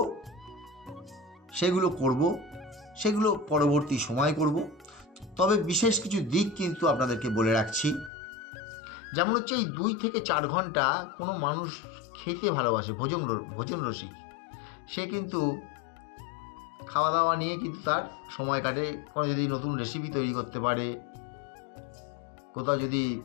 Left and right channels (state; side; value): drops out; right; at 8.1 s